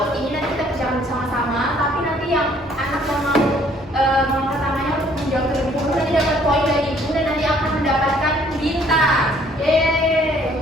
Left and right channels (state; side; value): normal; both; correlation 0.61